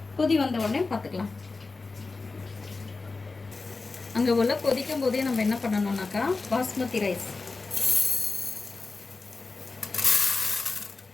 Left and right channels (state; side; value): quieter; right; 3.9 dB